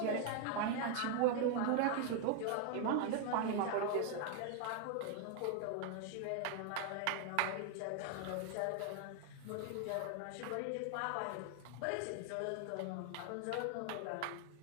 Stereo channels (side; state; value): both; different; correlation 0.00